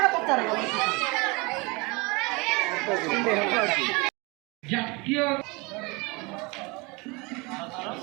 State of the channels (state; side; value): quieter; left; 26.6 dB